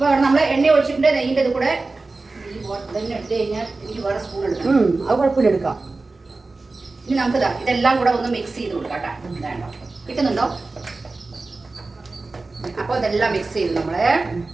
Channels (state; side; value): quieter; left; 3.5 dB